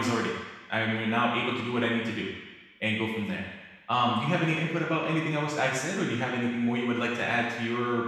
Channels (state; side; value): identical; both; correlation 1.00